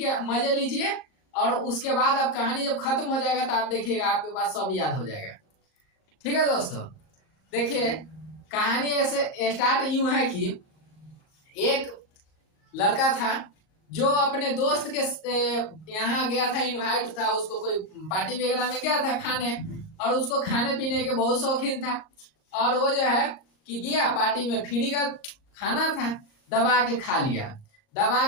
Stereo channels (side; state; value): right; late; 39 ms